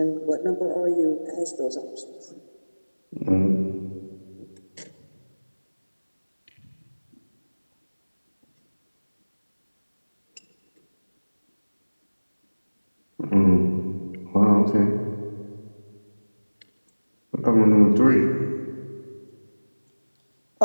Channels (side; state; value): both; inverted; correlation -1.00